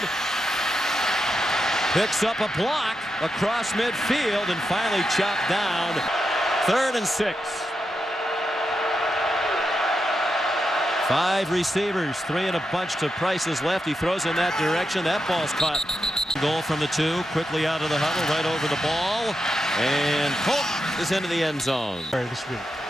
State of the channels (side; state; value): both; normal; correlation 0.87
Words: Picks up a block across midfield and finally chopped down. 3rd and 6. 5 receivers, 3 in a bunch to Price's left. He throws in that direction. That ball's caught. Goal from the 2, quickly out of the huddle, right over the ball. And Polk is into the end zone. This week,